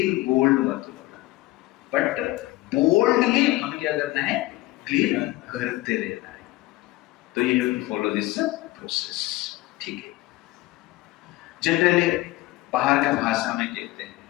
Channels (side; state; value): right; quieter; 18.6 dB